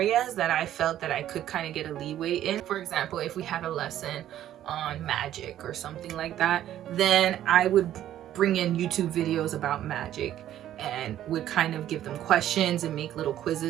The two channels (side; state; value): left; quieter; 12.0 dB